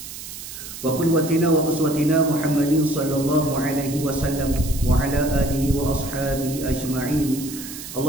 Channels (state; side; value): noise; right; hiss, 11 dB below the sound